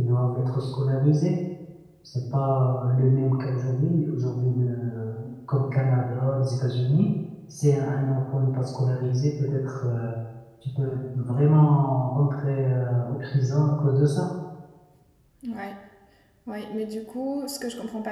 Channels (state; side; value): identical; both; correlation 1.00